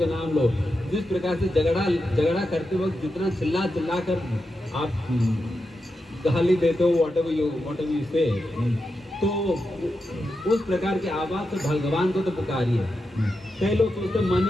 नाम लो। जिस प्रकार से झगड़ा करते वक्त जितना चिल्ला कर आप गाली देते हो, वॉट एवर यू से, तो उस प्रकार की आवाज से भगवान को तो पुकारिए। कई लोग सोचते मन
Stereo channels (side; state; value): both; normal; correlation 0.88